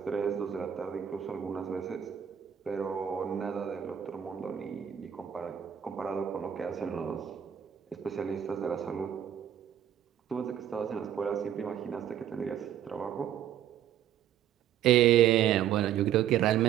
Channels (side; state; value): left; quieter; 10.0 dB